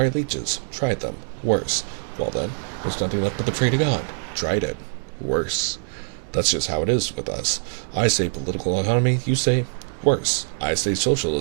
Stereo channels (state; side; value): silent; left; digital silence